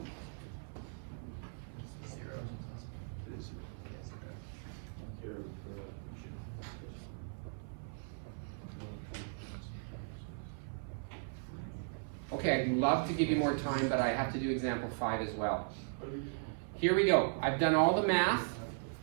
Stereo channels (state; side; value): silent; left; 53 dB below the other